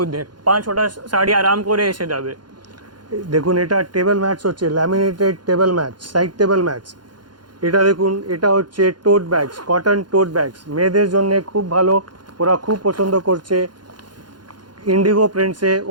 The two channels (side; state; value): left; late; 0.71 ms